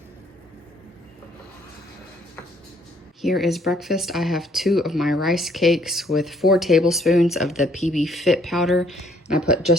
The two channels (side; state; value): both; normal; correlation 0.64